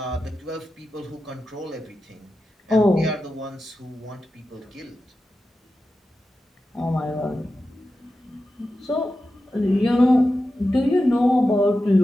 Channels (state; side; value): normal; both; correlation 0.92